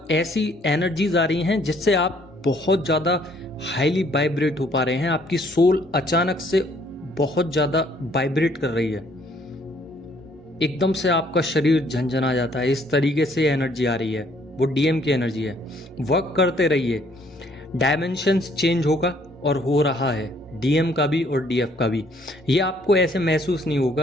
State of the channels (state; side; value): normal; both; correlation 0.64